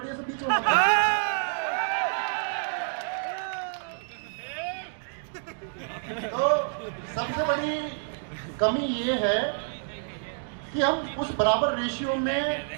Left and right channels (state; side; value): silent; left; digital silence